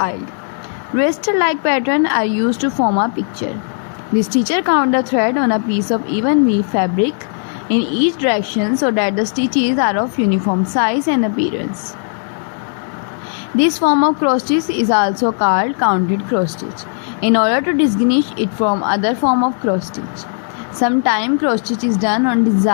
raster-like pattern are used to form a picture. The stitcher count the thread on a piece of even weave fabric in each direction so that the stitches are of uniform size and appearance. This form of cross stitch is also called counted cross stitch in order to distinguish it from other form of cross stitch. Sometimes cross stitch is done on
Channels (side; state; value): right; silent; digital silence